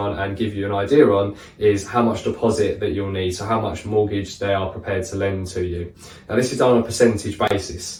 and give you an idea on is how much deposit that you'll need, so how much mortgage they are prepared to lend to you. Now this is done on a percentage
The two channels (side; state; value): both; identical; correlation 1.00